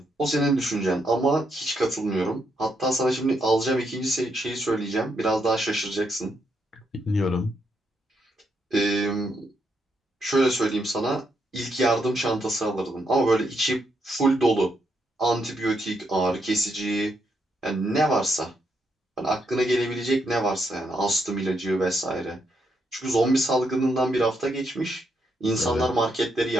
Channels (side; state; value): both; normal; correlation 0.79